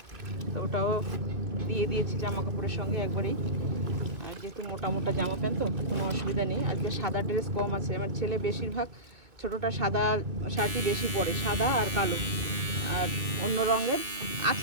তো ওটাও দিয়ে দিয়েছি জামা কাপড়ের সঙ্গে একবারেই। আর যেহেতু মোটা মোটা জামা প্যান্ট তো কোনো অসুবিধা নেই। আজকে সাদা ড্রেস কম আছে, আমার ছেলে বেশিরভাগ ছোটোটা সাদা শার্টই বেশি পরে, সাদা আর কালো। আর অন্য রঙের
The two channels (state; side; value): late; left; 2.7 ms